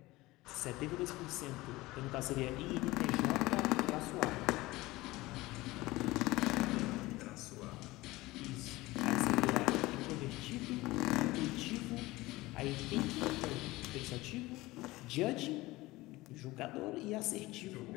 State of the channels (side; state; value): right; quieter; 19.6 dB